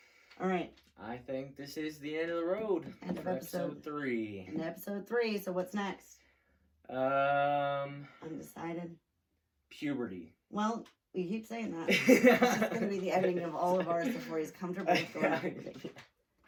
All right. I think this is the end of the road. End of episode 3. And episode 3. So what's next? Undecided. Puberty. Well, we keep saying that. It's going to be the ending of all of ours before he's comfortable with going.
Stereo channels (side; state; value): both; identical; correlation 1.00